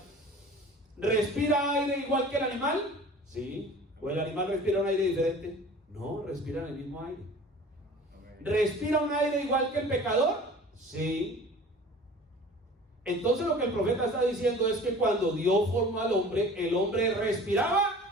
¿respira aire igual que el animal? Sí. ¿O el animal respira un aire diferente? No, respiran el mismo aire. ¿Respira un aire igual que el pecador? Sí. Entonces lo que el profeta está diciendo es que cuando Dios formó al hombre, el hombre respiraba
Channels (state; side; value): normal; both; correlation 0.43